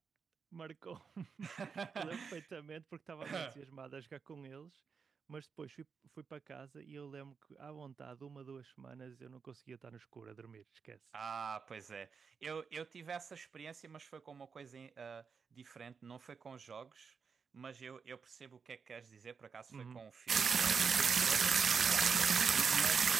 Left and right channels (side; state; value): left; quieter; 5.8 dB